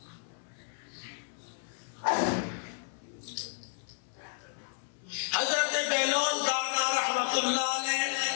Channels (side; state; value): right; silent; 56 dB below the other